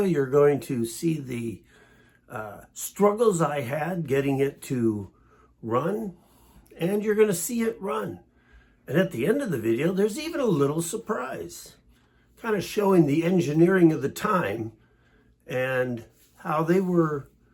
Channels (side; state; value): both; identical; correlation 1.00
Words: you're going to see the struggles I had getting it to run, and you're going to see it run. And at the end of the video, there's even a little surprise, kind of showing the engineering of the time and how they were